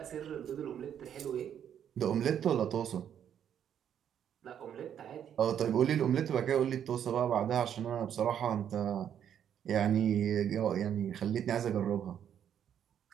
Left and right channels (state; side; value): quieter; left; 9.3 dB